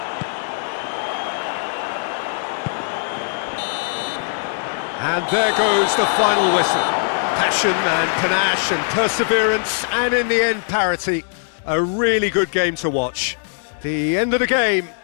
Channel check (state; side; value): silent; right; digital silence